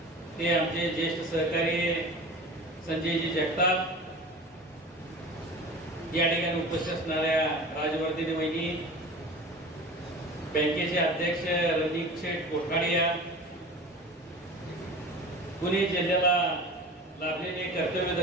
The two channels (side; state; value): both; normal; correlation 0.37